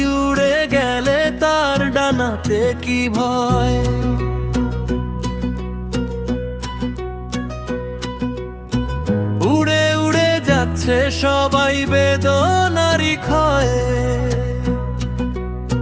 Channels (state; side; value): identical; both; correlation 1.00